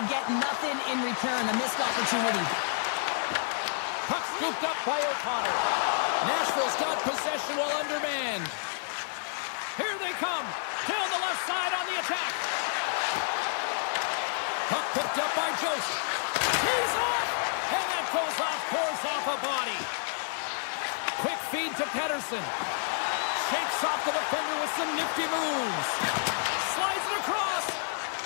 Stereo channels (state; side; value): silent; right; 58 dB below the other